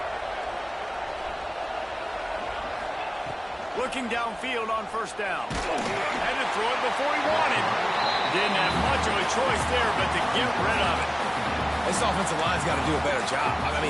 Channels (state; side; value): identical; both; correlation 1.00